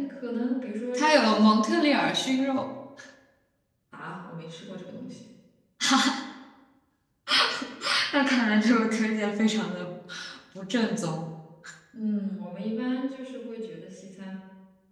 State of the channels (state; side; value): identical; both; correlation 1.00